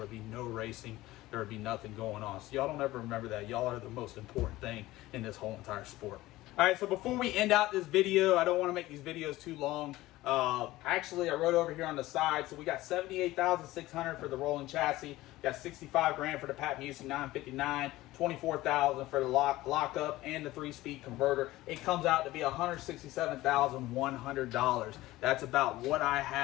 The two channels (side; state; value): right; quieter; 17.4 dB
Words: be no racing. There would be nothing going on. So y'all don't ever remember that. Y'all are the most important thing in this whole entire sport. All right, so before we end out this video, I don't want to make these videos too long. Actually, I wrote over here on the side, so we got $78,600 for the rolling chassis, got 65 grand for the Pat Musey 959, 24,000 for the lockup and the 3-speed converter. It comes out to be $167,100. That's about what I